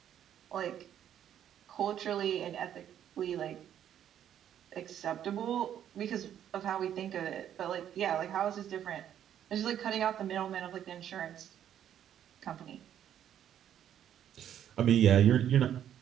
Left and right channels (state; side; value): quieter; left; 10.2 dB